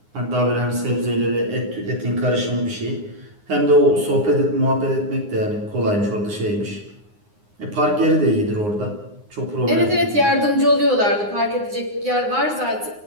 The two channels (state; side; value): late; left; 9.7 ms